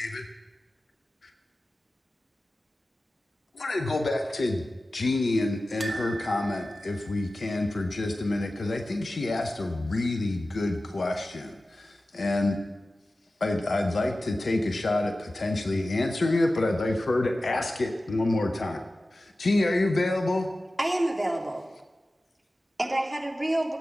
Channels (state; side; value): normal; both; correlation 0.95